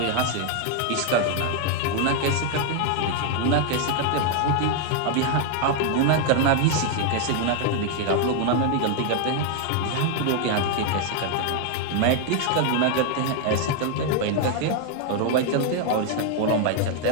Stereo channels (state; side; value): different; both; correlation 0.00